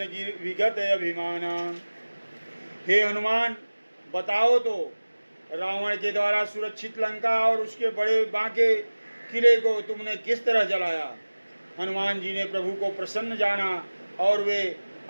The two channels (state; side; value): inverted; both; correlation -1.00